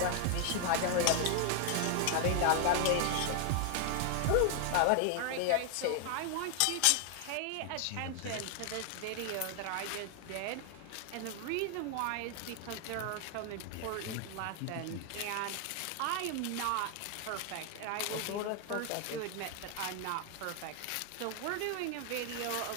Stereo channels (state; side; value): different; both; correlation 0.00